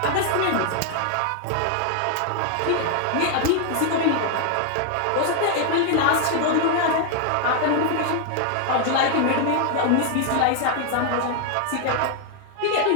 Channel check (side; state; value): both; different; correlation 0.00